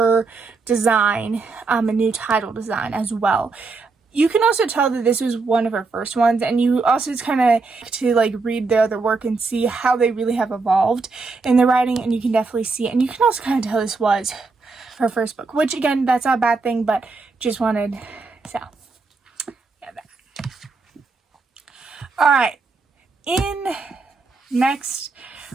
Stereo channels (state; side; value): quieter; left; 4.1 dB